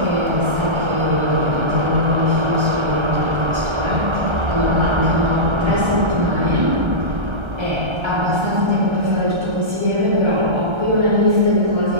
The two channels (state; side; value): late; left; 1.3 ms